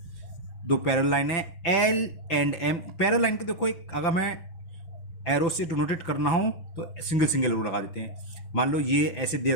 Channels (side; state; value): right; late; 5.9 ms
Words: दो पैरेलल लाइन है L and M। Parallel line को देखो, एक अगर मैं एरो से डिनोटेट करना हो तो सिंगल एरो लगा देते हैं। मान लो ये ऐसे दे